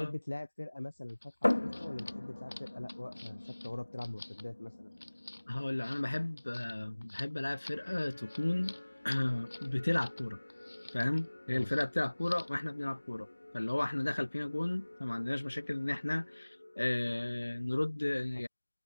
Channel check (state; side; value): inverted; both; correlation -1.00